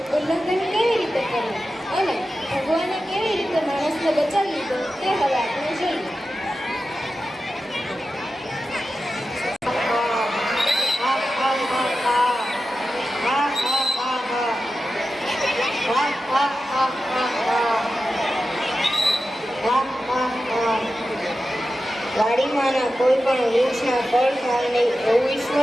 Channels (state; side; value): normal; both; correlation 0.92